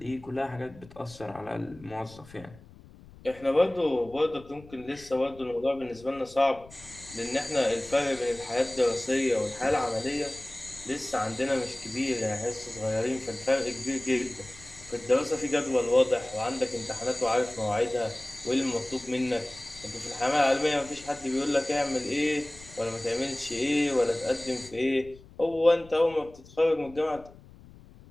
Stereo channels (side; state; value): left; noise; rumble, 21 dB below the sound